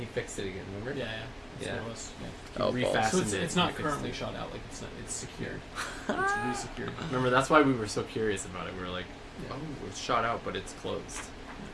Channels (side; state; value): both; identical; correlation 1.00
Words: fixed it again. Remember? Yeah, yeah. That's Yeah. what it was. Yeah. He Oh, refastened So it. it's he not fixed currently it. shot out. Like it's secured. It's re-secured. Remember, that's why we were so curious about it. We were like, Yeah. oh, it's shot out, but it's closed.